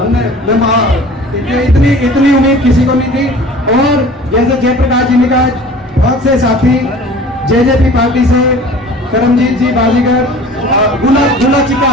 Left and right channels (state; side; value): normal; both; correlation 0.44